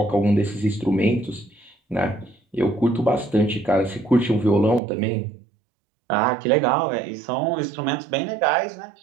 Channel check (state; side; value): drops out; left; at 4.8 s